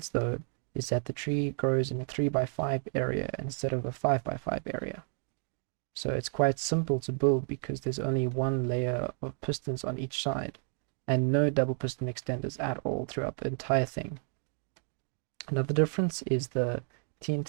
though is that the tree grows in a 3x5 area instead of a 5x5 area. So it's quite simple to build because there's only one layer of pistons on each side and no double piston extenders at all throughout the entire thing. Another difference is the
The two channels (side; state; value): left; silent; 57 dB below the other